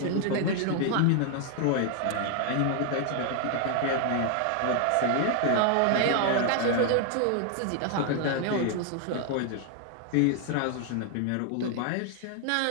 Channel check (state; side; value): different; both; correlation 0.00